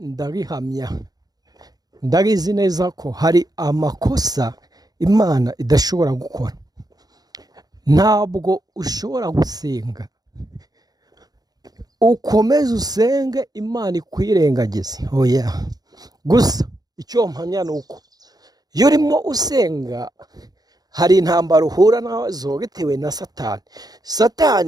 ndabizi neza ko hari amakosa Imana idashobora gukora. Ntabwo ushobora gusenga ukomeze usenge Imana ikwirengagize, oya. Gusa icyo mpamya ni uko iyo urimo usenga hari intambara uhura nazo bitewe na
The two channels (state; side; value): late; left; 0.19 ms